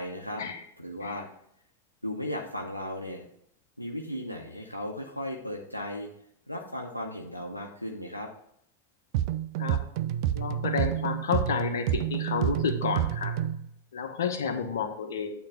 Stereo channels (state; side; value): inverted; both; correlation -0.32